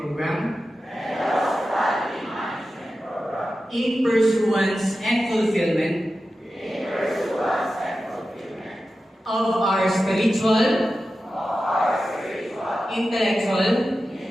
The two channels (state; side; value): normal; both; correlation 0.93